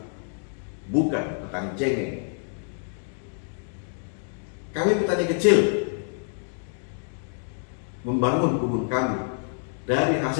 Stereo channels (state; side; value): silent; right; 60 dB below the other